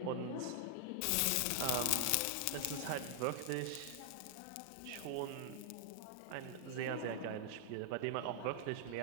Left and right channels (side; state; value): both; different; correlation -0.01